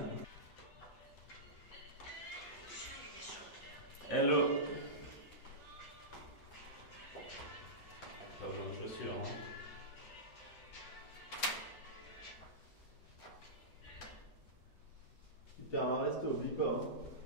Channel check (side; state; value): both; normal; correlation -0.17